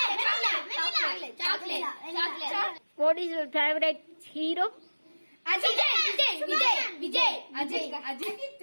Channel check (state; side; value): inverted; both; correlation -1.00